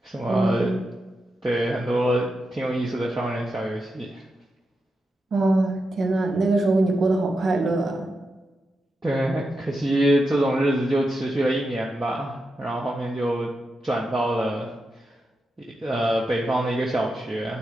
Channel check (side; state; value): both; normal; correlation 0.88